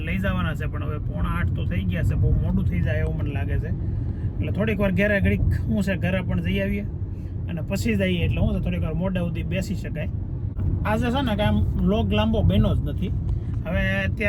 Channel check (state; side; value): identical; both; correlation 1.00